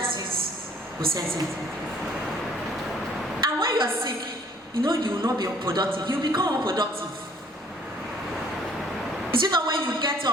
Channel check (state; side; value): normal; both; correlation 0.58